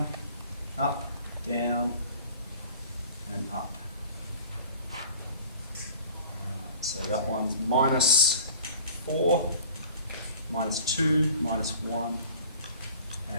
up, down, and up. Alright, so that one's minus 4, minus 2, minus 1,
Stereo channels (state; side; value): inverted; both; correlation -0.47